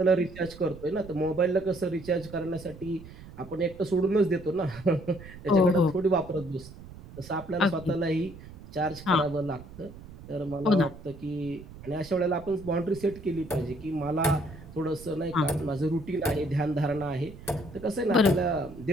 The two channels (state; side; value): noise; right; rumble, 16 dB below the sound